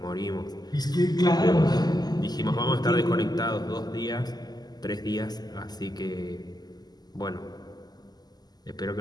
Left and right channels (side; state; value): right; late; 0.20 ms